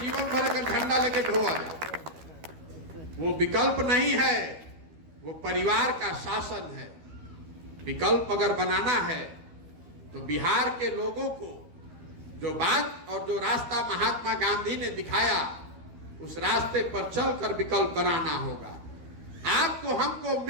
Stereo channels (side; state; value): left; late; 13 ms